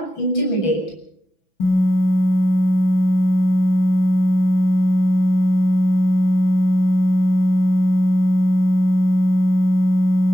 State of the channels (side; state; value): right; late; 6.0 ms